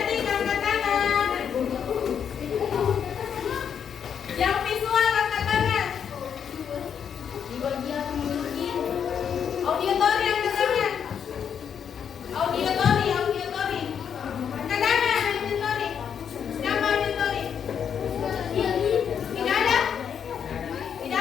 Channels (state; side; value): quieter; right; 7.8 dB